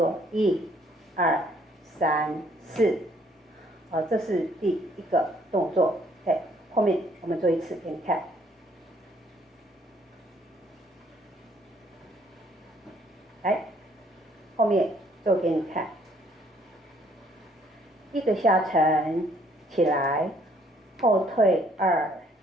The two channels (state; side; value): normal; both; correlation 0.64